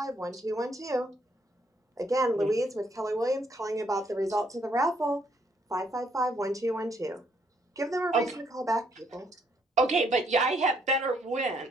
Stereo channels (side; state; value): both; normal; correlation 0.71